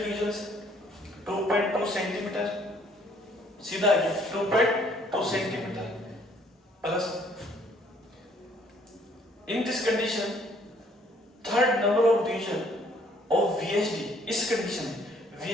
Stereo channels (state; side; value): normal; both; correlation 0.62